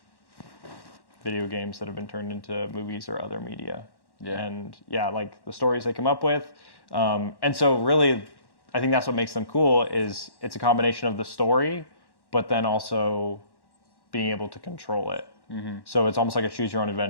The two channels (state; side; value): late; right; 1.1 ms